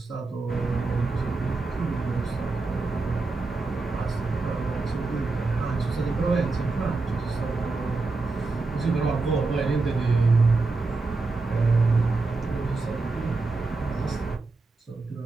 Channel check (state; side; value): quieter; left; 3.6 dB